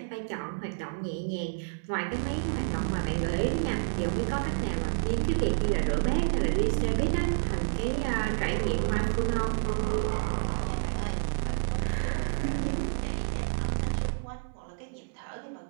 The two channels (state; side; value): silent; left; digital silence